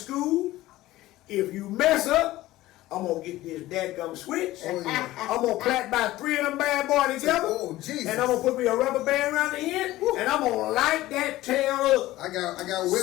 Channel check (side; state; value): right; quieter; 16.6 dB